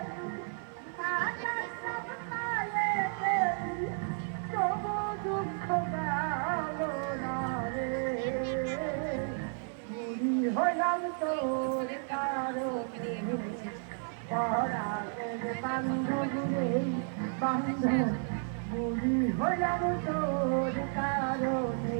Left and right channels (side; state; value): left; silent; 56 dB below the other